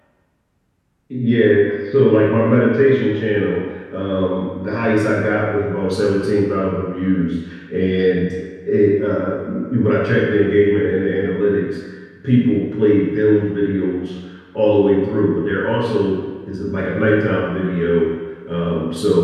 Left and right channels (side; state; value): both; identical; correlation 1.00